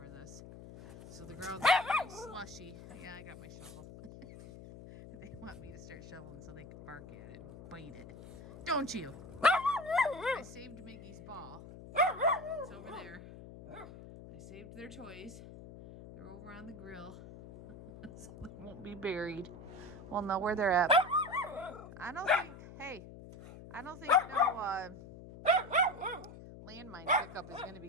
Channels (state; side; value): noise; left; hum, 15 dB below the sound